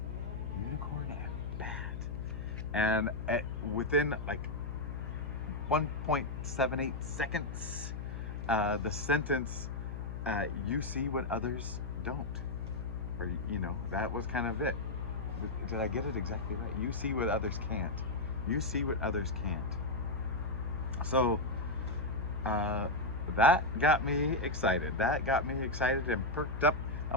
Unicorn and bat. And within like 1.78 seconds, the sentence, you see what others don't. Or, that was kind of it. Did I get it exactly right? You see what others can't. You see what others can't. So, that got me excited. That got me excited and perked up.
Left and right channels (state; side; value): noise; left; hum, 6 dB below the sound